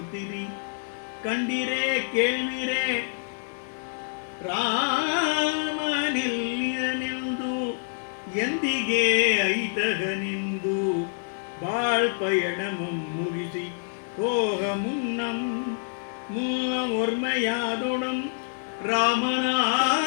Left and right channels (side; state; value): right; silent; digital silence